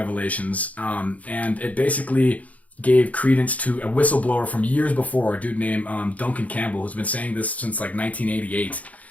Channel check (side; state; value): right; late; 0.070 ms